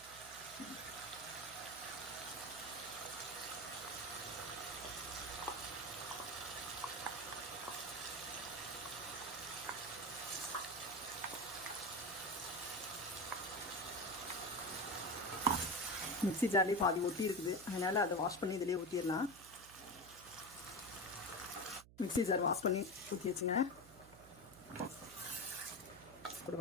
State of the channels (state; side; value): noise; right; hum, 20 dB below the sound